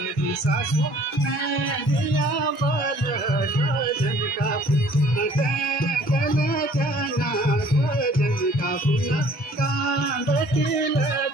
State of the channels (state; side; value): normal; both; correlation 0.54